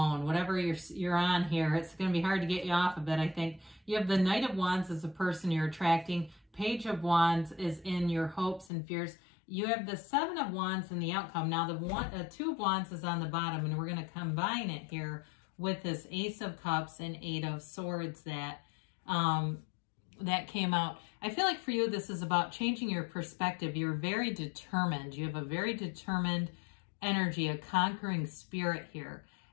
Whatever you're on here, it's going to be hard to get you off of it, I think. You have the Knight of Wands as the person you're attracting. Page of Wands is in your hopes and fears. You have the 7 of Wands in the outcome. Now, the 2 of Wands is on the bottom, and we're going to combine it here with this Ace of Cups and 8 of Swords that came out. I feel like for you, this is about changing your perspective. You're very determined. You have a very determined energy, a conquering spirit here.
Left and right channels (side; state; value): right; drops out; at 8.7 s